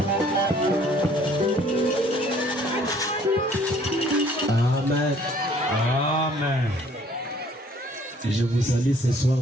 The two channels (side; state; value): both; normal; correlation 0.58